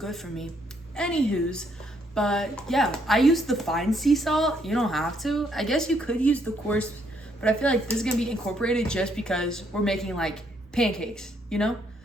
for me. Anywho's, but yeah, I use the fine sea salt. You don't have to. I guess you could use the coarse, but I feel like this is going to be incorporated just because we're making like pancakes, you know?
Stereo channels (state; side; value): normal; both; correlation 0.71